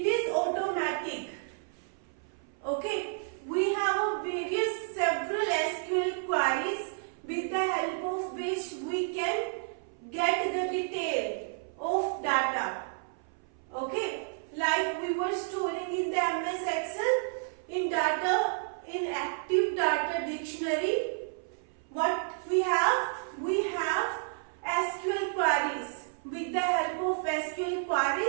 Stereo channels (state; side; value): silent; left; 57 dB below the other